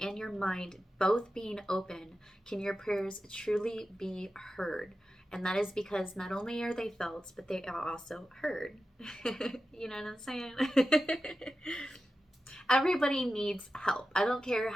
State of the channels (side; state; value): both; normal; correlation 0.92